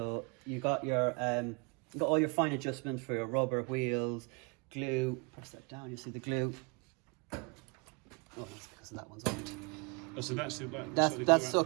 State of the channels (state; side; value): quieter; left; 31.5 dB